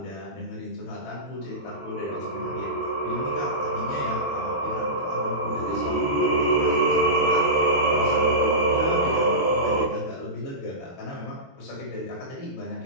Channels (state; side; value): late; right; 23 ms